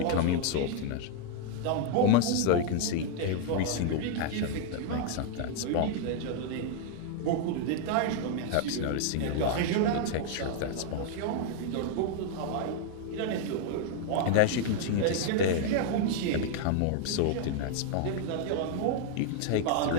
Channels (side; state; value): both; different; correlation 0.00